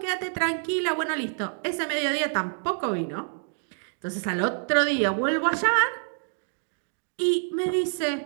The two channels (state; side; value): silent; left; digital silence